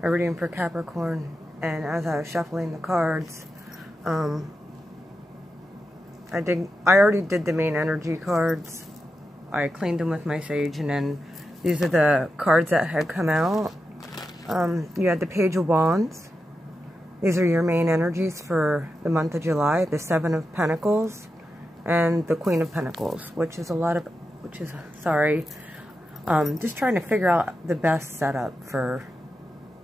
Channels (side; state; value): both; normal; correlation 0.89